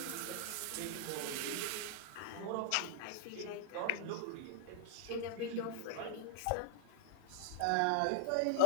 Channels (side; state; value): both; different; correlation 0.00